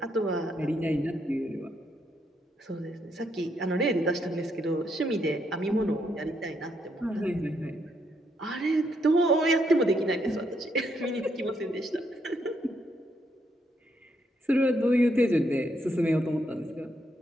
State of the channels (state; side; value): normal; both; correlation 0.76